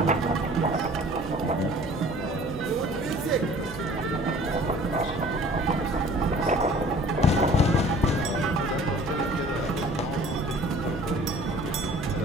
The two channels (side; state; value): both; normal; correlation 0.49